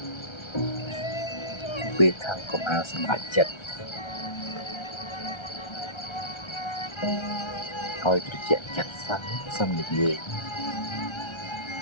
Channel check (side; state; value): right; late; 1.3 ms